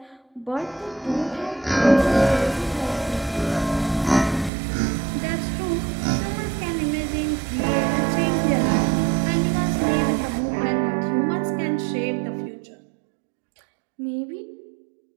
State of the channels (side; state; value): left; drops out; at 4.5 s